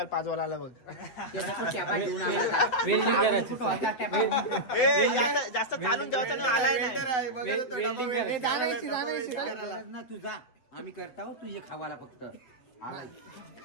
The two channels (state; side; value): late; right; 8.3 ms